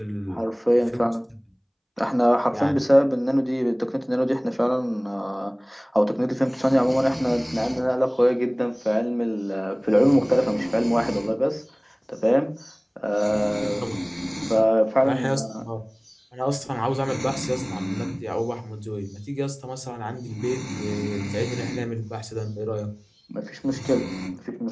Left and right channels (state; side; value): identical; both; correlation 1.00